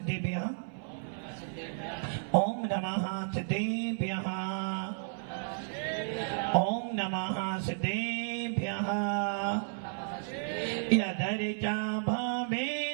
ओम नमः सिद्धेभ्यः, ओम नमः सिद्धेभ्यः। यदर्चा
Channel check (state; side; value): silent; left; 56 dB below the other